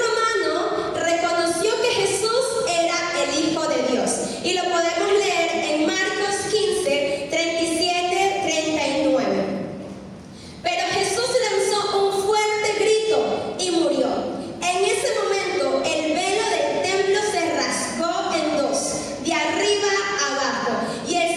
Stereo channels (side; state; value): both; identical; correlation 1.00